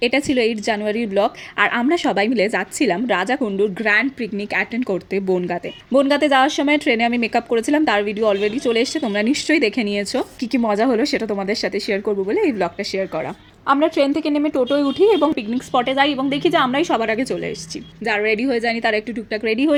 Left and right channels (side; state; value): both; identical; correlation 1.00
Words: এটা ছিল 8 জানুয়ারির ব্লগ। আর আমরা সবাই মিলে যাচ্ছিলাম রাজাকুণ্ডুর গ্র্যান্ড পিকনিক অ্যাটেন্ড করতে বনগাঁতে। বনগাঁতে যাওয়ার সময় ট্রেনে আমি মেকআপ করেছিলাম, তার ভিডিও অলরেডি চলে এসেছে, তোমরা নিশ্চয়ই দেখে নিয়েছো। কী মজা হলো সেটা তোমাদের সাথে শেয়ার করবো বলে এই ব্লগটা শেয়ার করা। আমরা ট্রেন থেকে নেমে টোটোয় উঠি এবং পিকনিক স্পটে যাই এবং দেখি যে আমরাই সবার আগে চলে এসেছি। যারা রেডি হয়ে যায়নি তারা একটু টুকটাক রেডি